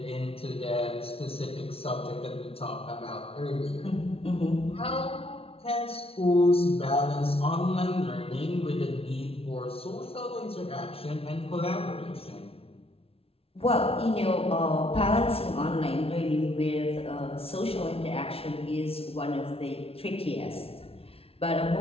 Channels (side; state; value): right; late; 0.27 ms